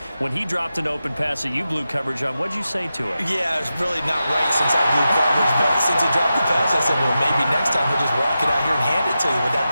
when he dropped an open pass that you blew coverage on, what'd you say to him? Yeah, it's really not right since I blew coverage, but since he dropped the pass, I said, well, maybe next time he'll just walk it out here and hand it to you. Would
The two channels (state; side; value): inverted; both; correlation -0.91